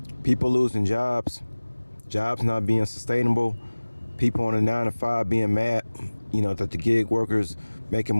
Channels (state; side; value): inverted; both; correlation -1.00